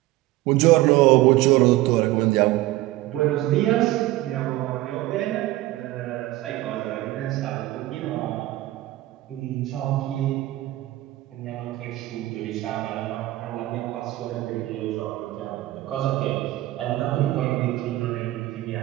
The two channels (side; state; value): left; quieter; 17.1 dB